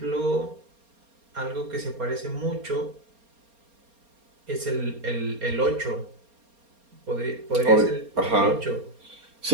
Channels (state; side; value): late; left; 4.3 ms